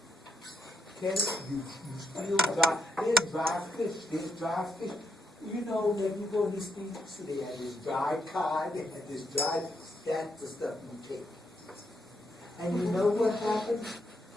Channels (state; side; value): normal; both; correlation 0.78